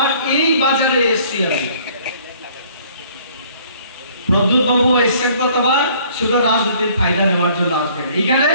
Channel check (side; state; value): both; inverted; correlation -0.57